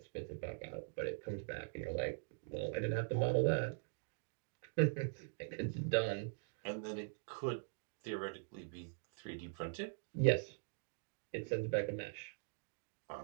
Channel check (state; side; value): silent; left; digital silence